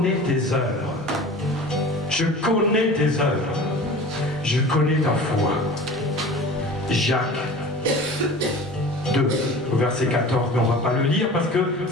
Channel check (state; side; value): normal; both; correlation 0.39